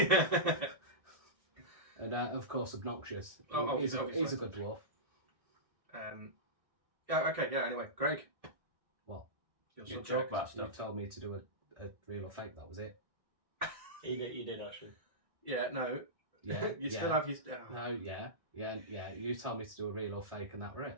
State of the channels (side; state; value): left; late; 1.6 ms